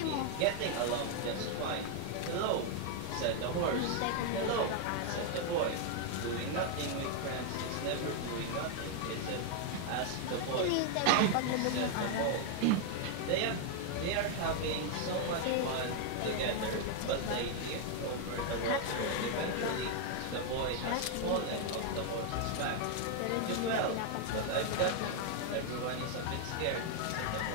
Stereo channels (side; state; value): both; different; correlation 0.00